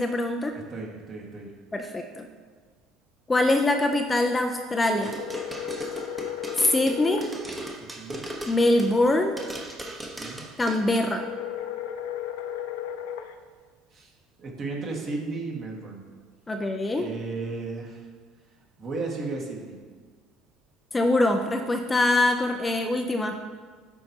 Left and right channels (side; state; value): both; normal; correlation 0.79